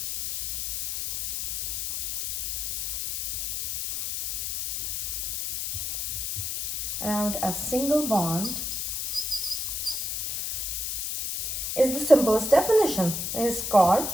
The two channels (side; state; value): left; noise; hiss, 2 dB below the sound